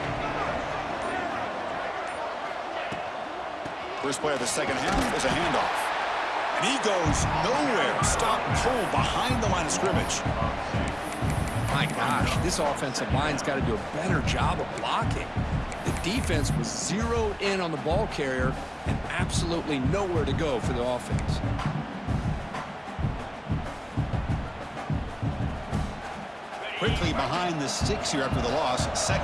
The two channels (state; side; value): identical; both; correlation 1.00